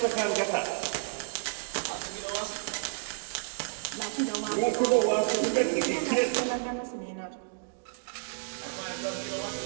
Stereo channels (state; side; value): silent; left; digital silence